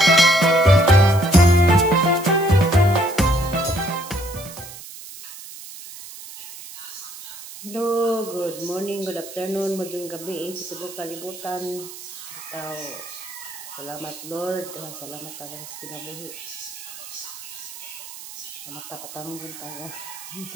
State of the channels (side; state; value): right; noise; hiss, 14 dB below the sound